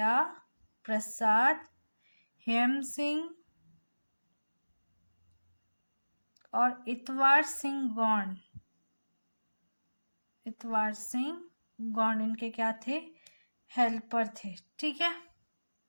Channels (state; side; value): inverted; both; correlation -1.00